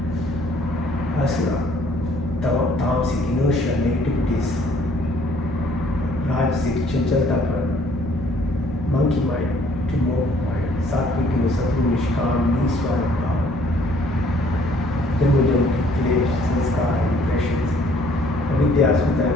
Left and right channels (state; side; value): noise; left; hum, 15 dB below the sound